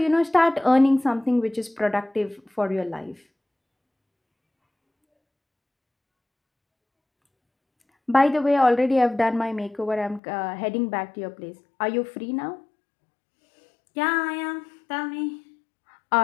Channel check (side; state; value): right; drops out; at 10.2 s